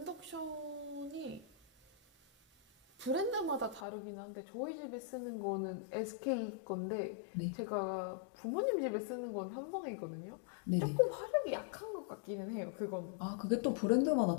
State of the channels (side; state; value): right; drops out; at 3.9 s